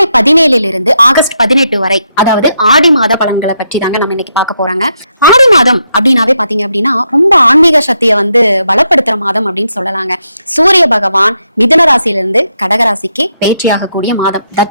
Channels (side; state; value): both; inverted; correlation -0.81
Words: 17 இருந்து ஆகஸ்ட் 18 வரை, அதாவது ஆடி மாத பலன்களை பற்றி தாங்க நம்ம இன்னைக்கு பார்க்க போறாங்க. ஆடி மாதம் அப்படின்னாவே பாத்தீங்க அப்படின்னா ரொம்ப ஆன்மீக சக்தியை பலப்படுத்துற மாதம் அப்படின்னு சொல்லலாங்க. சூரிய பகவான் மிதுன ராசியிலிருந்து கடகராசிக்கு பேச்சியாகக்கூடிய மாதம்.